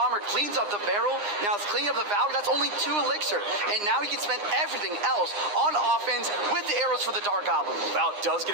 cleans up the barrel. Now it's cleaning up the Valkyrie. That's only 2 elixir. And now he can spend everything else on offense with the arrows for the Dark Goblin. Val does get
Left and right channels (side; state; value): left; late; 9.8 ms